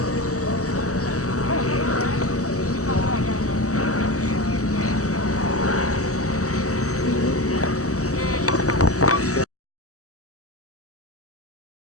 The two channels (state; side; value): late; right; 0.66 ms